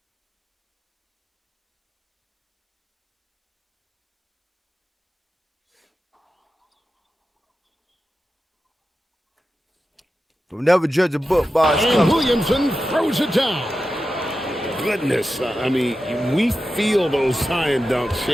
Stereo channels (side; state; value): both; normal; correlation 0.92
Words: We'll never judge a book by its And cover. Williamson throws it down. Goodness, I mean, we feel those science dunks